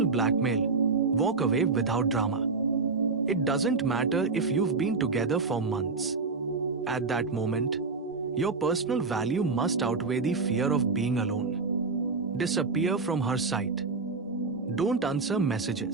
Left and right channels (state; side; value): quieter; left; 4.2 dB